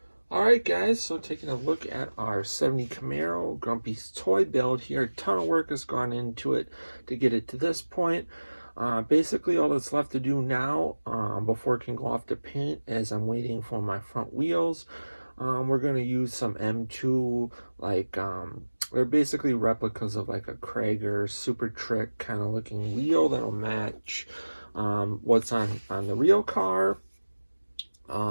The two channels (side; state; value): both; inverted; correlation -1.00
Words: Alright guys, so taking a look at our 70 Camaro Grumpy's toy build here. A ton of work has gone into it to get it to this point. Basically all that's left to do now before it can go off to paint is I'm waiting for my front wheels. We're going to use some M2, like they're basically replicas of like a Krager Super Trick kind of looking wheel that'll match what's on the real car.